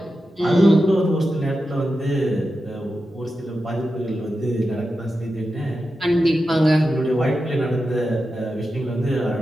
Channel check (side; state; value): both; normal; correlation 0.90